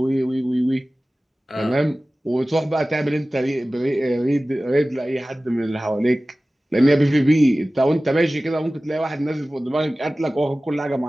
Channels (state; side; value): normal; both; correlation 0.97